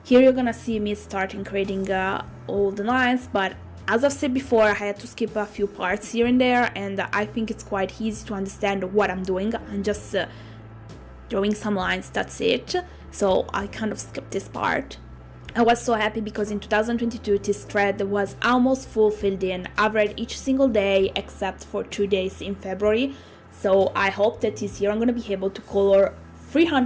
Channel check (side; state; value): both; identical; correlation 1.00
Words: Here you're gonna see me starting creating all the lines, but as I've said before, I had to skip a few parts here and there, and I think it's quite easy to understand what I'm doing. I'm just drawing some lines, that's it. So I kind of skipped this part. I was so happy because in 2022 this thread was almost full filled in. I've read each single day except for 2 days in February. So I hope that this year I'm gonna be able to color